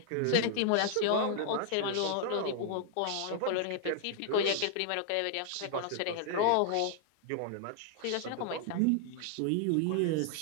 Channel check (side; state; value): both; different; correlation 0.00